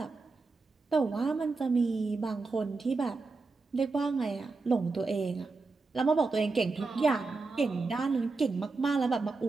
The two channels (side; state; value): left; quieter; 3.9 dB